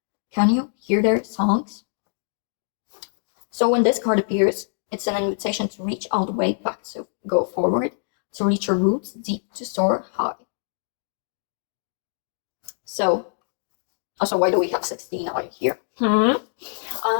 Can you hear their songs? So when this card appears, it's an invitation to reach all the way back, to go forward, to reach your roots deep, to soar high. So, also, why do we have 16 out here? No,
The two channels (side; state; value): right; silent; digital silence